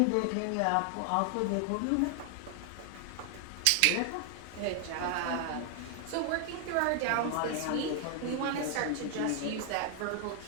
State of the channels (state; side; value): different; both; correlation 0.00